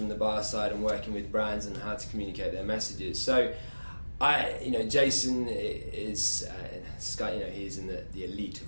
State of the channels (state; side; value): inverted; both; correlation -1.00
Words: the bar side and working with brands and how to communicate their messages. So Jason is he's in the elite